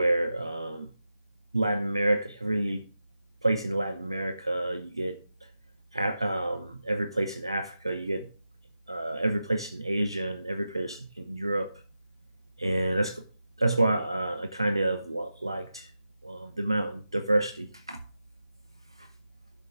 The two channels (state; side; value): inverted; both; correlation -0.90